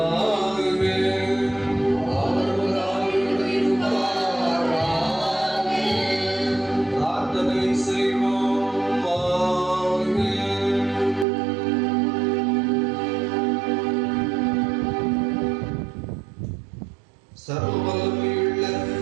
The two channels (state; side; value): drops out; left; at 11.2 s